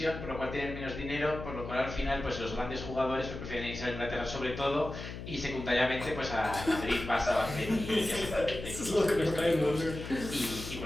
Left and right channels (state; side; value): noise; left; hum, 9 dB below the sound